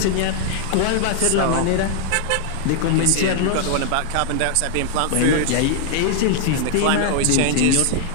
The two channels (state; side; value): different; both; correlation 0.00